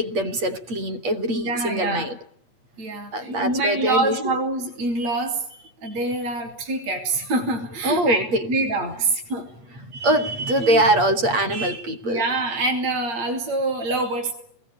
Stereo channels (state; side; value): late; left; 8.7 ms